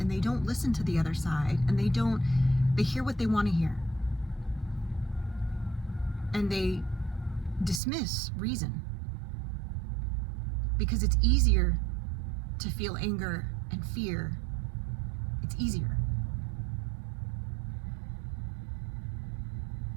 they don't listen to the other side, and they hear what they want to hear. And they dismiss reason because it's easier to feel anger and fear. It's easier.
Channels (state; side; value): drops out; left; at 7.8 s